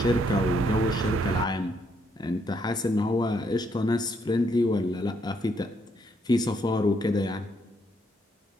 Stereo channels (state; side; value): normal; both; correlation 0.73